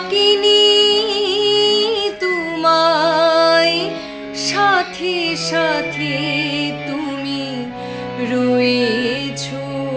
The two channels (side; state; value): both; identical; correlation 1.00